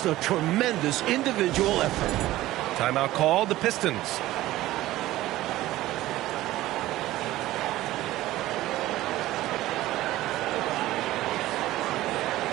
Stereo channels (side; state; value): left; quieter; 16.1 dB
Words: a tremendous individual effort. Timeout called, the Pistons.